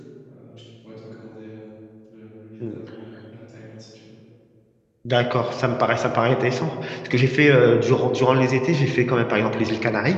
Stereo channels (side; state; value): both; identical; correlation 1.00